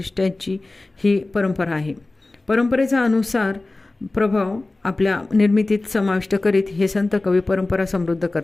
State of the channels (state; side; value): quieter; right; 3.0 dB